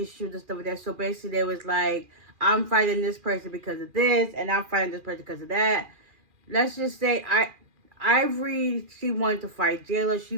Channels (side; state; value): left; late; 2.4 ms